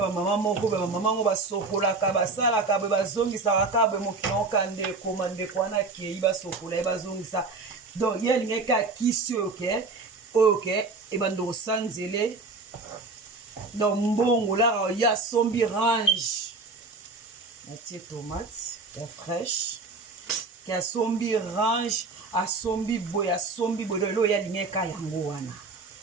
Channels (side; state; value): left; quieter; 3.8 dB